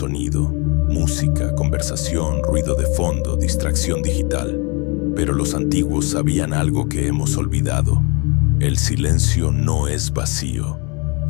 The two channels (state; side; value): quieter; right; 30.5 dB